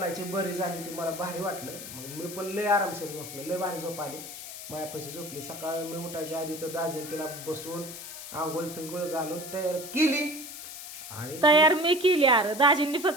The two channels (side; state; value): left; noise; hiss, 11 dB below the sound